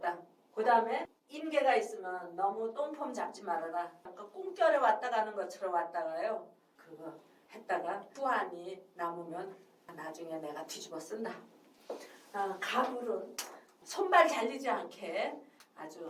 그 다음에 인계가 있으면 너무 똥폼 잡지 말아라. 아까 꿈결에 왔다 가는 것처럼 왔다가요. 그거 했다가 후환이 남으면 나중에 내가 뒤집어 쓴다. 가불은 손발 잘리지 않게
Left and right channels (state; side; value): identical; both; correlation 1.00